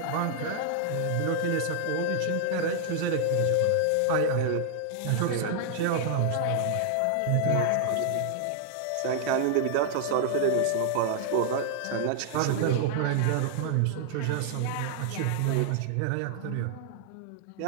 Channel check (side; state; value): both; different; correlation 0.00